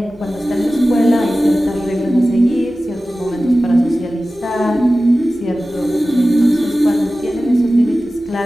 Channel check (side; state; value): both; normal; correlation 0.96